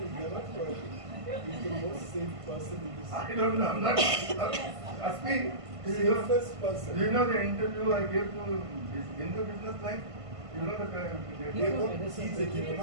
He's the most safe person in this. I don't know, I'm not. Aspi, Safest person. do you know the interview I gave to this Hindu business line? You know the He's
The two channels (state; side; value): late; left; 1.5 ms